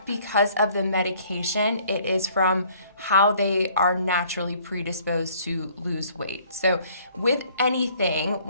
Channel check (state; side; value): inverted; both; correlation -0.58